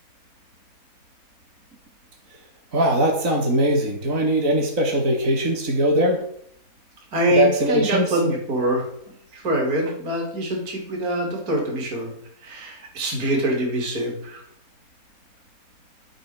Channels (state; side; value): late; left; 3.9 ms